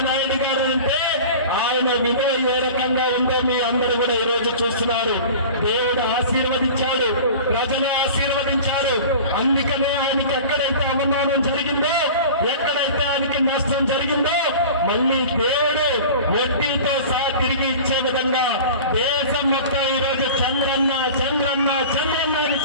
నాయుడు గారు అంటే ఆయన విలువ ఏ రకంగా ఉందో మీ అందరూ కూడా ఈ రోజు చూస్తున్నారు. దేవుడు ఆశీర్వదించాడు, ప్రజలు ఆశీర్వదించారు. అందుకనే ఆయనకి ఎక్కడైతే అవమానం జరిగిందో, ఎక్కడైతే ఆయనకి నష్టం జరిగిందో మళ్ళీ దేవుడు వడ్డీతో సహా తిరిగి ఇచ్చే విధంగా దేశం మొత్తం ఈ రోజు చంద్రన్న చంద్రన్న చంద్రన్న అని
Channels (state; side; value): inverted; both; correlation -0.38